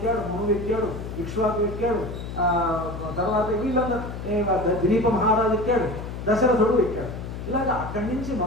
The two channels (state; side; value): noise; left; hum, 8 dB below the sound